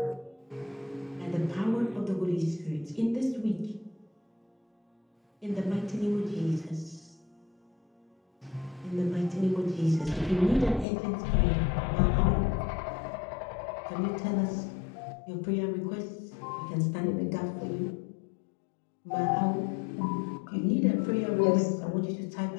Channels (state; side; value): drops out; right; at 10.9 s